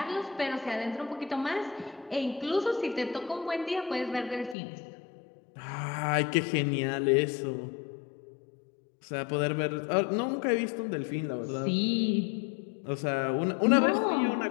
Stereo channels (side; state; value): right; drops out; at 4.5 s